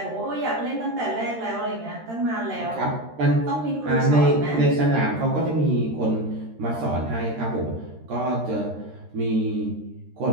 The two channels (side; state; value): left; late; 13 ms